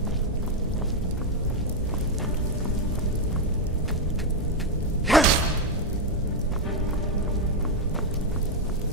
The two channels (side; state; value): both; normal; correlation 0.02